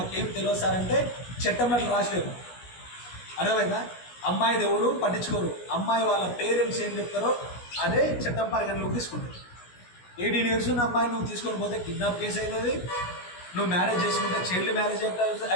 తెలియదు సార్ అంటే చట్టంలో అట్లా రాసలేరు. అర్థమైందా? అమ్మాయిది ఎవరు పట్టించుకోరు. అమ్మాయి వాళ్ళ పేరెంట్స్ ఏం చెప్తారో అదే చట్టం పరిగణలోకి తీసుకుంటారు. 18 years ఉన్న అమ్మాయి నువ్వు తీసుకొని పోతే కిడ్నాప్ కేసు అవుతుంది, నువ్వు మ్యారేజ్ చేసుకుంటే చైల్డ్ మ్యారేజ్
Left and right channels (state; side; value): late; right; 17 ms